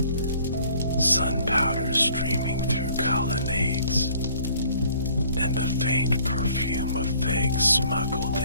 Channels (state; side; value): inverted; both; correlation -0.58